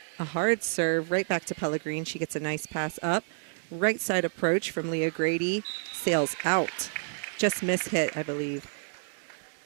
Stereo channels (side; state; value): left; silent; digital silence